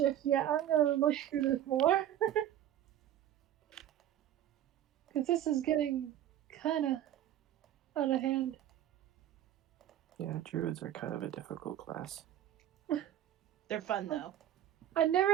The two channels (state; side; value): quieter; left; 11.7 dB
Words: yet. I'm gonna look through this more. Because this is getting kind of out of hand. Yeah, druids are kind of a difficult class. They're fun though. I